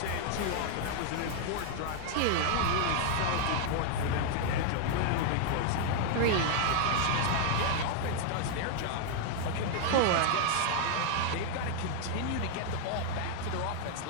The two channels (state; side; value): different; both; correlation 0.00